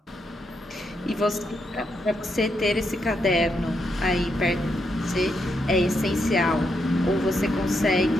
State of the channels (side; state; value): both; normal; correlation 0.80